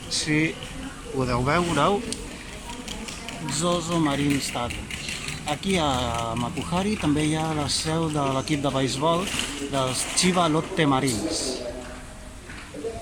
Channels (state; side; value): identical; both; correlation 1.00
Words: si podeu veure-ho, Zozo Marine Stadium. Aquí a Makuhari també hi ha la seu de l'equip de beisbol dels Chiba Lotte Marines.